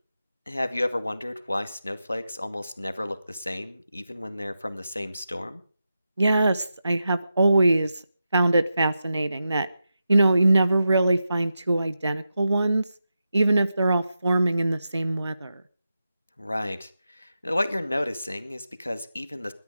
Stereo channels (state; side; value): inverted; both; correlation -0.89